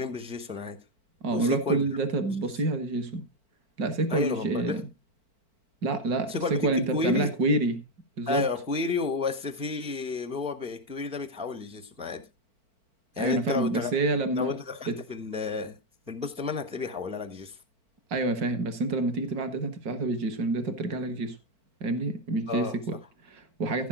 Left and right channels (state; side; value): late; left; 4.5 ms